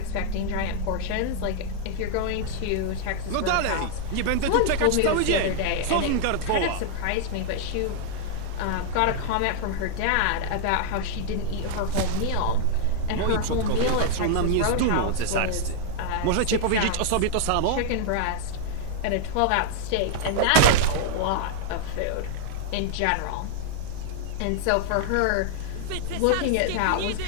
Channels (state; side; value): different; both; correlation -0.01